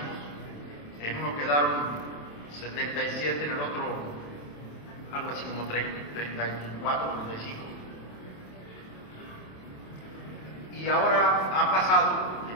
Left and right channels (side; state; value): right; late; 27 ms